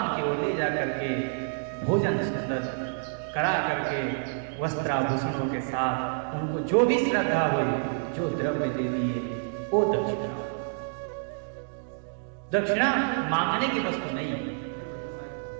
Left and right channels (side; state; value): left; silent; digital silence